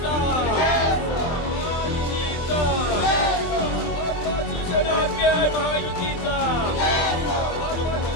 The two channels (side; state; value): right; late; 23 ms